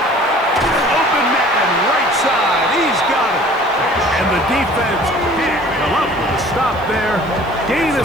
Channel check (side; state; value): right; noise; hiss, 28 dB below the sound